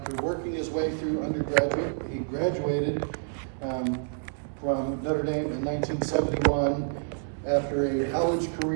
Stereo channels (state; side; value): silent; left; digital silence